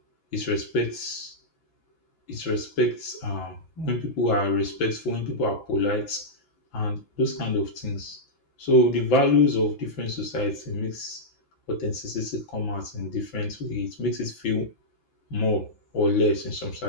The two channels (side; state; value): right; late; 5.9 ms